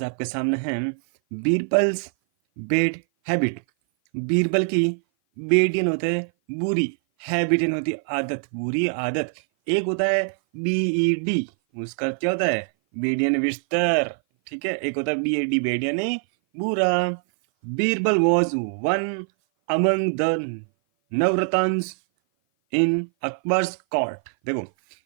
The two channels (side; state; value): left; silent; 57 dB below the other